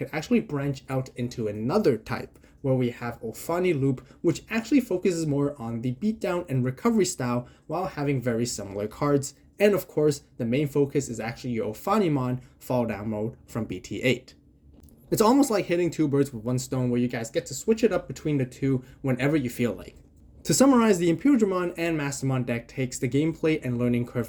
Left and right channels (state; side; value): identical; both; correlation 1.00